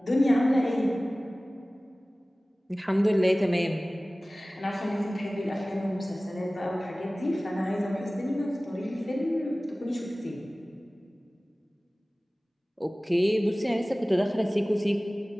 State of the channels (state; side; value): normal; both; correlation 0.98